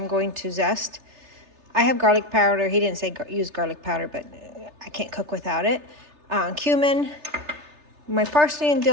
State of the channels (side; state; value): left; late; 3.3 ms